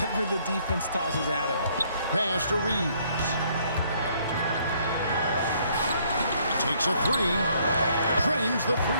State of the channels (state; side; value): inverted; both; correlation -0.66